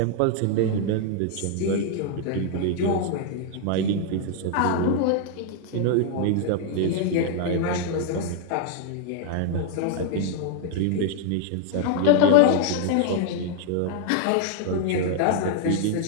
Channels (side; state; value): both; different; correlation 0.00